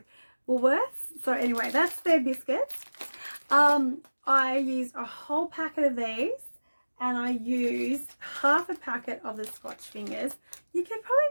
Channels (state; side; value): inverted; both; correlation -1.00